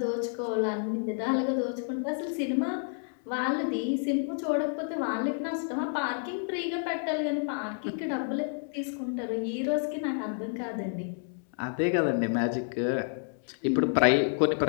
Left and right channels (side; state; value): right; silent; 58 dB below the other